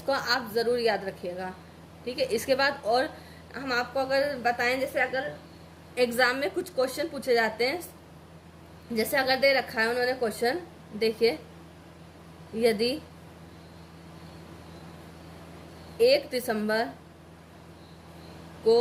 आप ज़रूर याद रखिएगा, ठीक है। इसके बाद और हम आपको अगर बताएं, जैसे अगर एग्ज़ाम में कुछ क्वेश्चन पूछे जाते हैं, जैसे अगर दे रखा है उन्होंने क्वेश्चन, देखिए, यदि 1 दिसंबर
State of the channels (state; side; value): identical; both; correlation 1.00